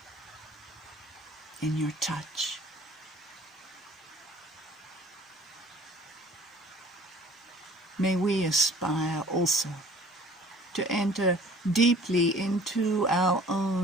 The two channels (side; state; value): both; normal; correlation 0.51